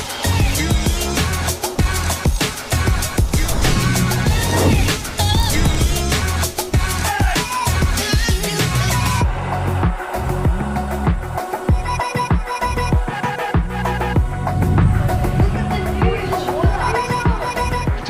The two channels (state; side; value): identical; both; correlation 1.00